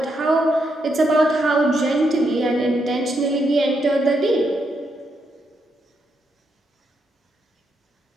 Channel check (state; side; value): normal; both; correlation 0.80